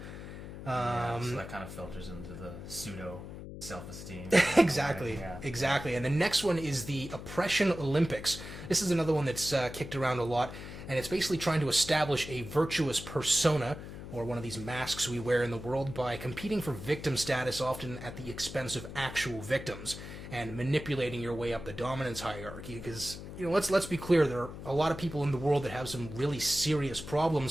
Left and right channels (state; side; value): noise; left; hum, 11 dB below the sound